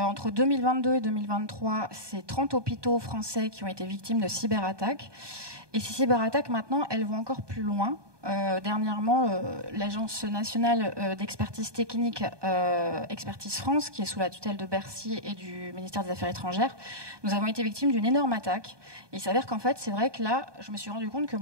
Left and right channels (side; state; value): left; late; 1.2 ms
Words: 2022 et 2023, c'est 30 hôpitaux français qui ont été victimes de cyberattaques. Et ces cyberattaques maintenant, elles vont encore plus loin. Dernièrement, l'Agence nationale d'expertise technique, Expertise France, qui est sous la tutelle de Bercy et du ministère des Affaires étrangères, nous avons été victimes d'une énorme attaque. Et il s'avère qu'en fait, c'est vrai que là, je me suis rendu compte que